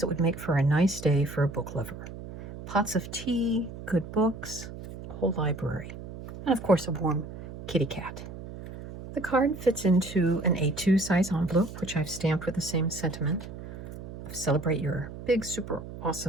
would make for a nice day for a book lover. Pots of tea, good books, a whole library, and of course a warm kitty cat. The card fits into an A2 size envelope, which I've stamped with the same sentiment of celebrate your big, super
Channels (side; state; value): right; noise; hum, 12 dB below the sound